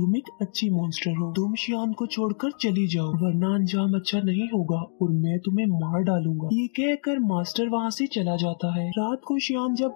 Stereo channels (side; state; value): right; silent; digital silence